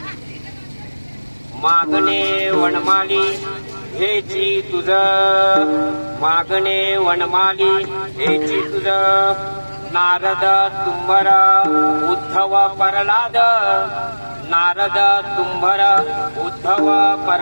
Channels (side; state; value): both; inverted; correlation -1.00